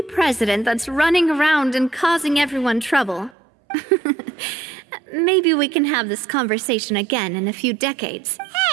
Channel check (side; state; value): left; drops out; at 3.3 s